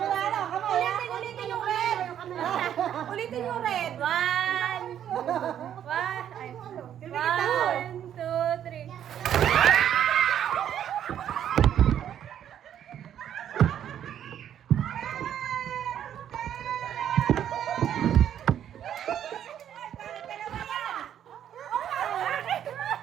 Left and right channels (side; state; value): left; quieter; 10.1 dB